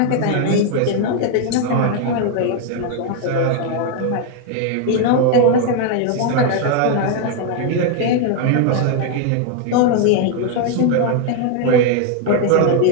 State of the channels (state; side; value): different; both; correlation 0.01